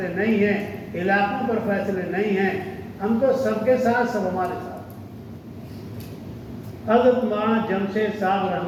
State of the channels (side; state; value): both; identical; correlation 1.00